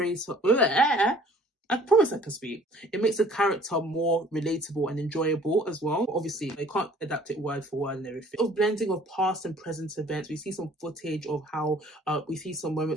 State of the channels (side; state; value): both; normal; correlation 0.54